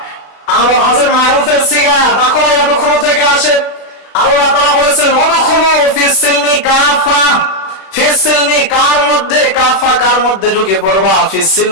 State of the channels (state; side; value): late; right; 36 ms